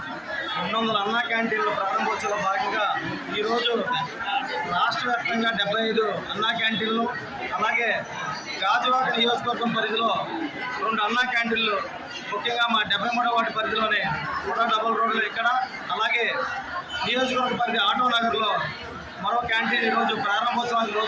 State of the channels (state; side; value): identical; both; correlation 1.00